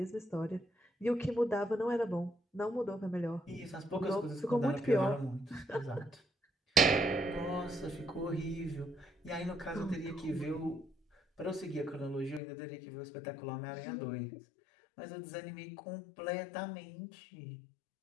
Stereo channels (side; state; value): right; drops out; at 12.4 s